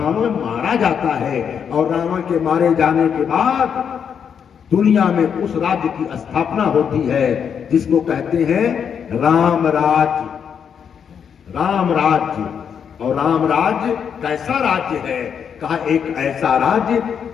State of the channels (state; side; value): quieter; right; 7.5 dB